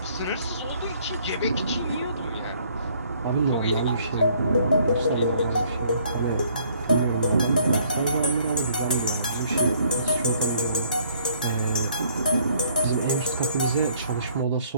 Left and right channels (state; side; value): inverted; both; correlation -0.62